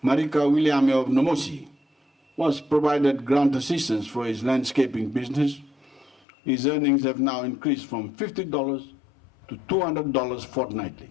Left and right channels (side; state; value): right; drops out; at 6.2 s